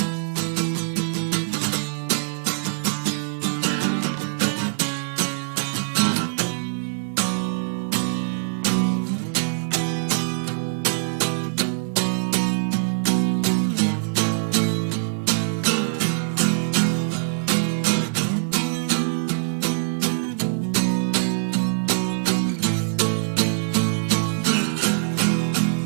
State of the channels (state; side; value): silent; left; digital silence